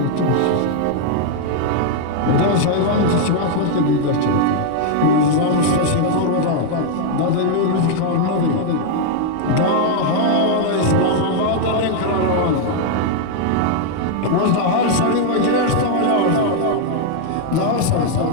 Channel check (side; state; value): both; different; correlation -0.01